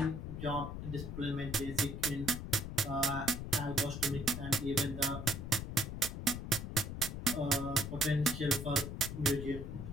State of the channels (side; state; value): left; noise; rumble, 6 dB below the sound